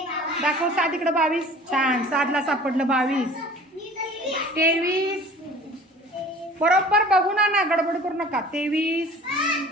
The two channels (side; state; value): both; normal; correlation 0.45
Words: दाखव. 7 इकडं. 22 छान. 7ला सापडलं. 22 23 बरोबर बघू ना. गडबड करू नका. 23